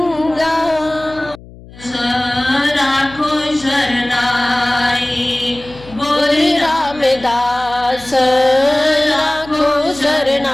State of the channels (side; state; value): left; noise; hum, 20 dB below the sound